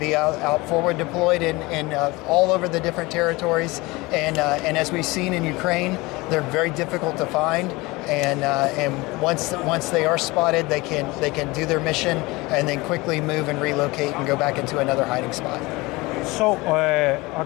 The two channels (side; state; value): right; quieter; 22.7 dB